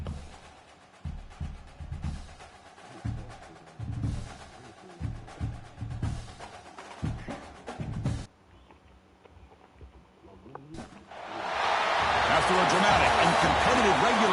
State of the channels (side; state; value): both; identical; correlation 1.00